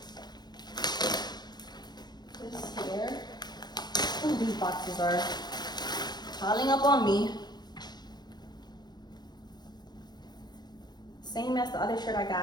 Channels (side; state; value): right; late; 0.20 ms